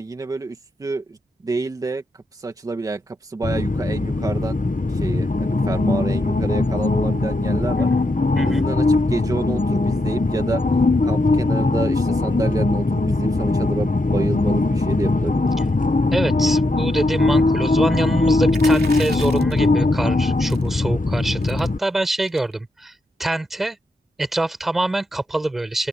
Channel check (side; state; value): both; normal; correlation 0.82